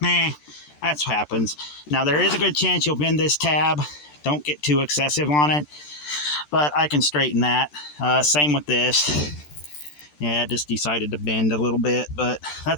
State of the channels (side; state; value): right; late; 13 ms